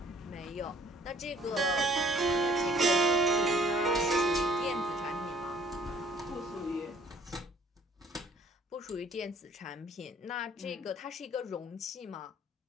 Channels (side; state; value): both; normal; correlation 0.57